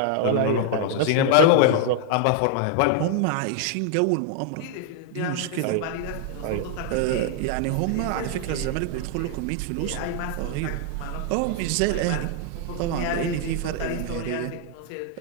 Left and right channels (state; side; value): different; both; correlation 0.00